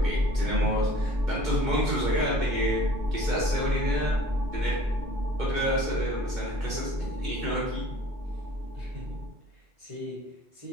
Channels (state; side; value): late; left; 2.2 ms